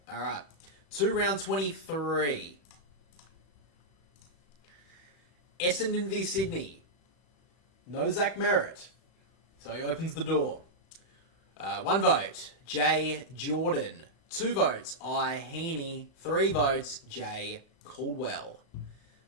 All right. 2 round 23. Essendon v Sydney. No Zach Merritt. So he opens the door. 1 vote, Jay Jordan. 2 votes, I Heaney. 3 votes, Jay Caldwell.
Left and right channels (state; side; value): late; right; 35 ms